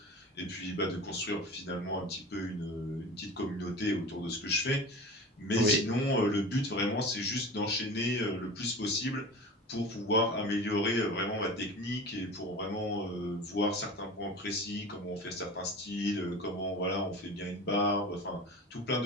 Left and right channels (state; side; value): normal; both; correlation 0.34